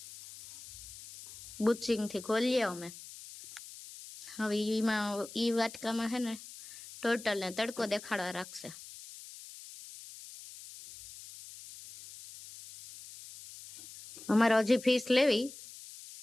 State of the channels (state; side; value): noise; left; hiss, 15 dB below the sound